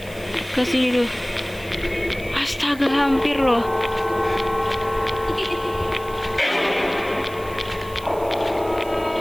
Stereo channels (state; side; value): noise; right; hiss, 20 dB below the sound